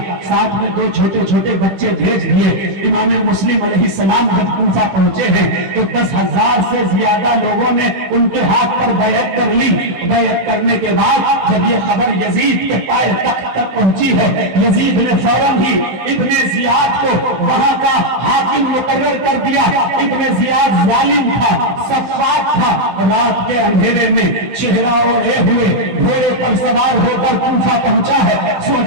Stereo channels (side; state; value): left; late; 16 ms